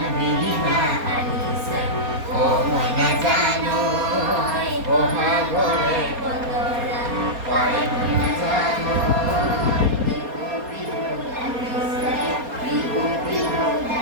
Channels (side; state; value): left; late; 4.2 ms